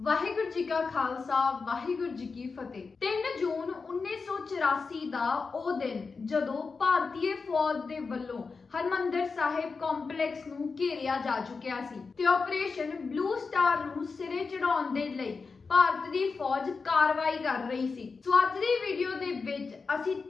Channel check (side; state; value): right; quieter; 4.6 dB